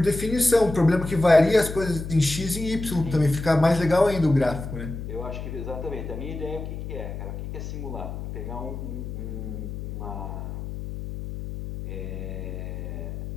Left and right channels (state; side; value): noise; left; hum, 7 dB below the sound